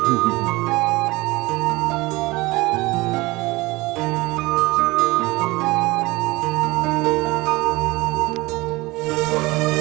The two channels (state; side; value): quieter; left; 21.7 dB